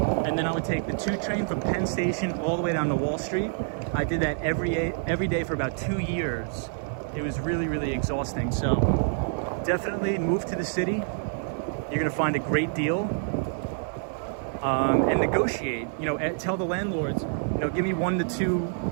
and then I would take the 2 train from Penn Station all the way down to Wall Street. I did that every day for about 2 years. It was really, really exhausting. So definitely move to the city. You're gonna find a great deal. And negotiate, you know, tell the landlords, you know, give me 1 to 2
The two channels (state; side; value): silent; left; digital silence